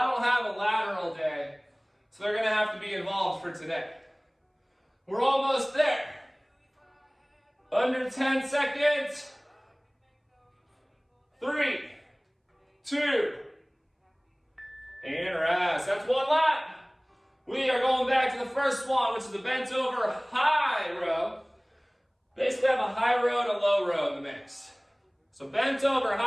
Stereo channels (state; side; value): identical; both; correlation 1.00